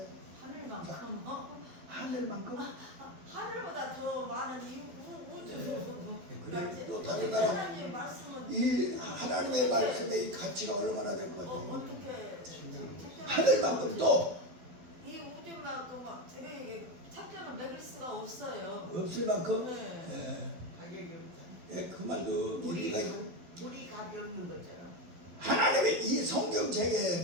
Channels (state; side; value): late; left; 12 ms